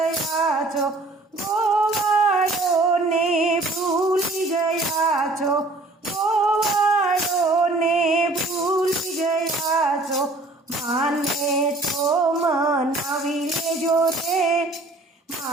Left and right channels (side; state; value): left; quieter; 3.0 dB